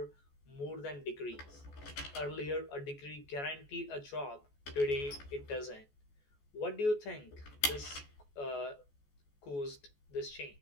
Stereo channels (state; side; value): late; right; 14 ms